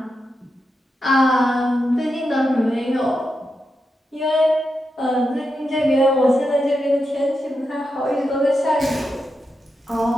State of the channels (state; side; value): normal; both; correlation 0.87